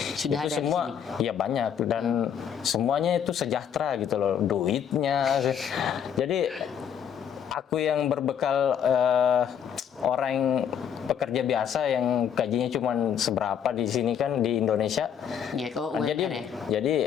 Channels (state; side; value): quieter; right; 8.4 dB